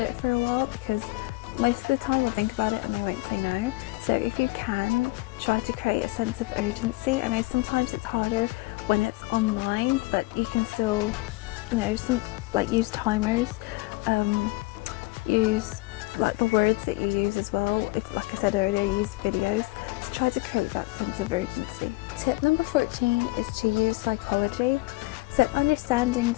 it for a while, because most of the time they'll think about it and they won't say no. So if you can, try to create a sense of urgency. I know sometimes it's harder when it's online, but you can still, use timers, use like the words that you use as well. If, like I said earlier, use videos to try to create that sense of urgency. Tip number 14 is to use psychology. So understanding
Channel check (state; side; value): quieter; right; 22.4 dB